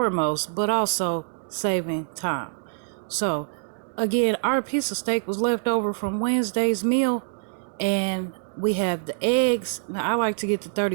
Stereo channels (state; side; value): silent; left; digital silence